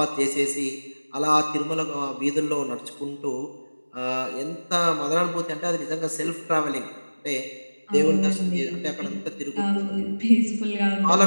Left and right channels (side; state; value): both; inverted; correlation -1.00